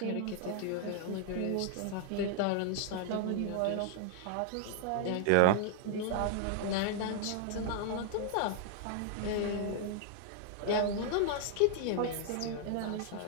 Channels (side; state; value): both; different; correlation 0.00